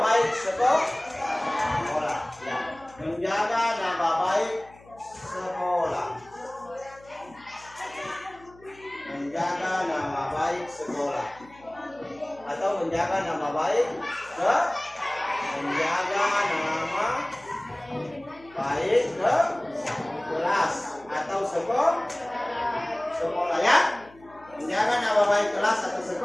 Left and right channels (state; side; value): noise; left; hum, 25 dB below the sound